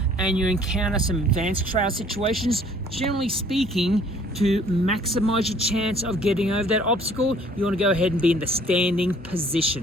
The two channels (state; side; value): normal; both; correlation 0.57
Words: and you encounter some advanced trail situations, generally speaking, to maximize your chance of getting over that obstacle, you want to go ahead and be in the standing